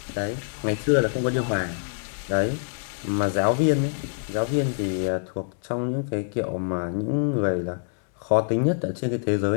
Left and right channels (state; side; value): silent; right; digital silence